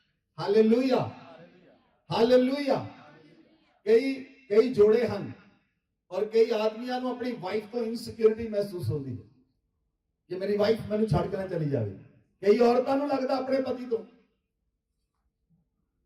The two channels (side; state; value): both; identical; correlation 1.00